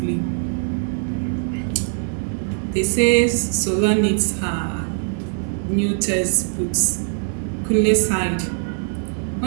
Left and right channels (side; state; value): left; silent; 65 dB below the other